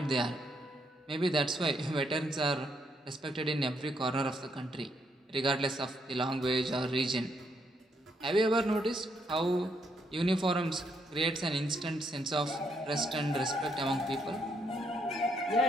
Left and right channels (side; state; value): both; normal; correlation 0.74